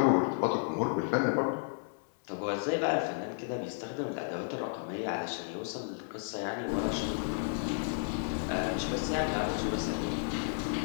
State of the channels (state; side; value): silent; right; 56 dB below the other